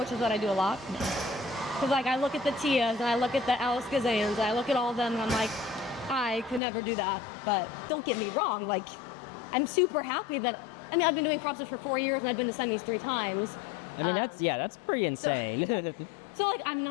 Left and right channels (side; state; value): right; drops out; at 6.6 s